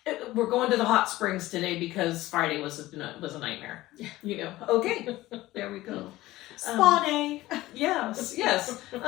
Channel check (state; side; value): quieter; right; 17.2 dB